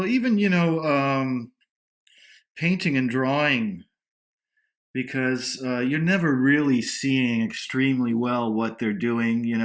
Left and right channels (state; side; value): identical; both; correlation 1.00